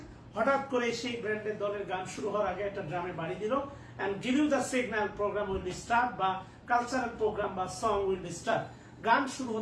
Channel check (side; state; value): both; identical; correlation 1.00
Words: হঠাৎ করে সেই ব্র্যান্ডের দলের গান শুরু হওয়ার আগে একটা ড্রামে বাড়ি দিল, and give you the signal program will start, বা কালচারাল প্রোগ্রাম বা সং উইল স্টার্ট, গান শুরু